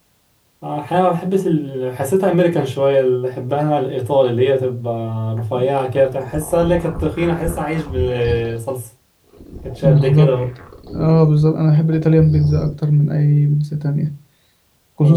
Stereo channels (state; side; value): identical; both; correlation 1.00